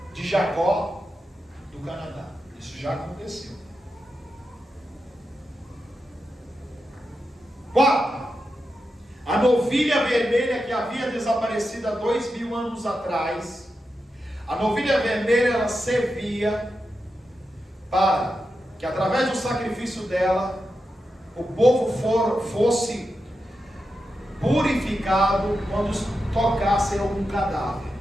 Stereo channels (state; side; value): normal; both; correlation 0.89